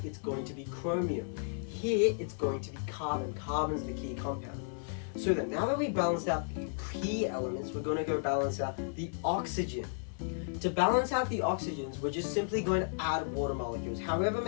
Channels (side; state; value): right; silent; 55 dB below the other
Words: it's going to be chromium. Here it's going to be carbon. Carbon's the key compound. So then, now that we've balanced out the key elements, we're going to go balance out the oxygen. To balance out the oxygens, we're just simply going to add water molecules. However